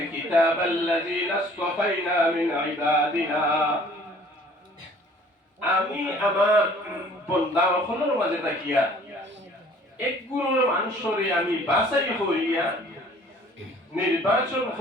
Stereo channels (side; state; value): both; normal; correlation 0.53